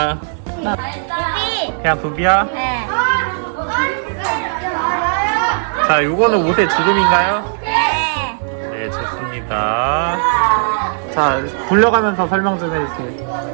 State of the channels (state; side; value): silent; left; digital silence